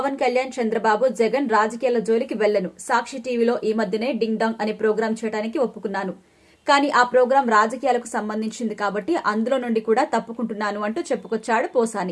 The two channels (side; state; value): both; identical; correlation 1.00